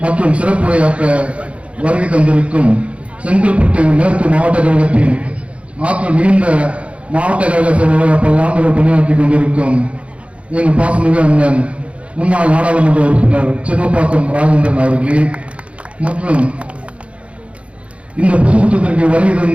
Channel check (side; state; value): left; late; 0.062 ms